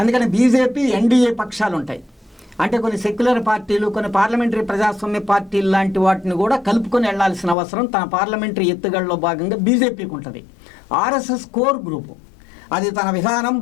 బీజేపీ ఎన్డీఏ పక్షాలు ఉంటాయి, అంటే కొన్ని సెక్యులర్ పార్టీలు, కొన్ని పార్లమెంటరీ ప్రజాస్వామ్య పార్టీలు లాంటి వాటిని కూడా కలుపుకొని వెళ్లాల్సిన అవసరం తన పార్లమెంటరీ ఎత్తుగడలో భాగంగా బీజేపీకి ఉంటుంది. ఆర్ఎస్ఎస్ కోర్ గ్రూపు, అది తన విధానం,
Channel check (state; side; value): drops out; right; at 7.6 s